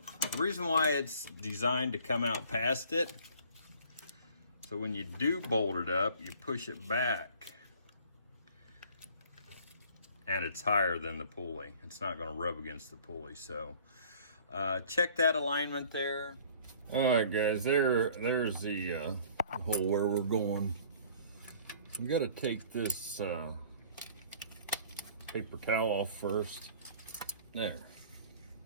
the reason why it's designed to come out past it, so when you do bolt it up, you push it back and it's higher than the pulley. It's not gonna rub against the pulley. So check that alignment there. All right, guys, there's the hole where we're going. We got to take this paper towel off first. There.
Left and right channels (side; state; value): both; inverted; correlation -0.51